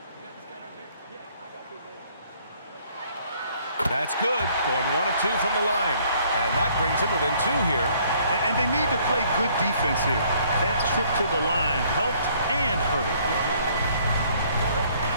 That's good. Going 1 of 2 from the line. And that brings him within 2 here. And they need to play good defense here. That trip to the line helped and hurt.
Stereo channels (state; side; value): inverted; both; correlation -0.62